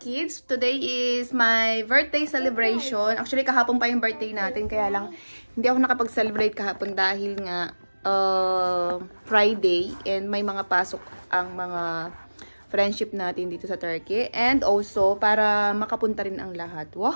kids. Today is my birthday celebration. Actually, kahapon pa yung birthday natin. Kaya lang, hindi ako nakapag-celebrate kahapon dahil nga Friday. And may mga pasok ang mga friendship natin dito sa Turkey. And also, para makapunta rin ang lahat.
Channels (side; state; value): both; inverted; correlation -1.00